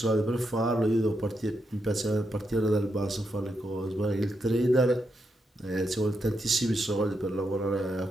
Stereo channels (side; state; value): both; normal; correlation 0.83